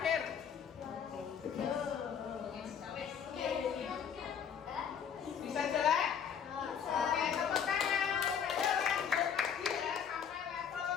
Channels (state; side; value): quieter; right; 7.7 dB